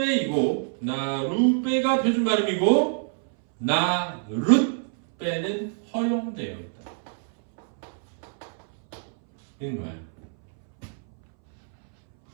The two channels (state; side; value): silent; left; 62 dB below the other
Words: 나룻배가 표준 발음이고 나룻배는 허용되어 있다. 이런 거야.